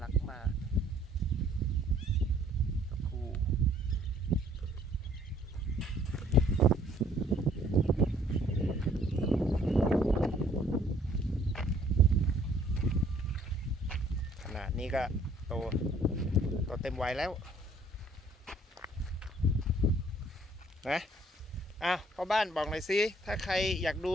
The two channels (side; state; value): both; normal; correlation 0.60